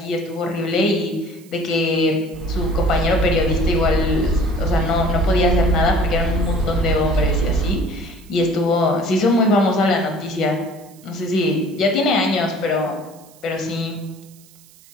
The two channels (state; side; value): noise; right; hiss, 26 dB below the sound